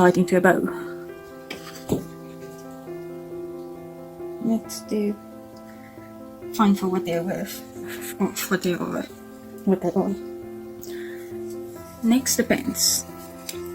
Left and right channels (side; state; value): both; identical; correlation 1.00